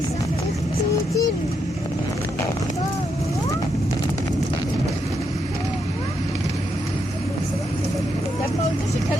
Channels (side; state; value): both; normal; correlation 0.80